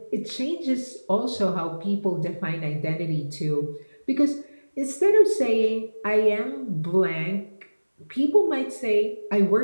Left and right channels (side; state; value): both; inverted; correlation -1.00